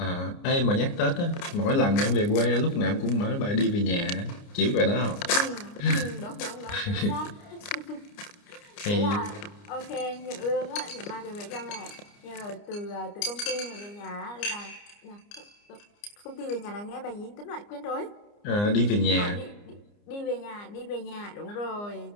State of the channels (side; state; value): right; late; 29 ms